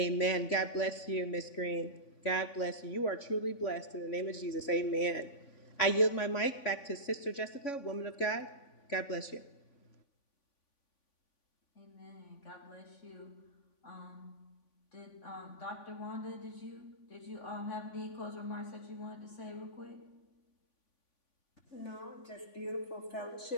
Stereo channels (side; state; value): right; late; 3.5 ms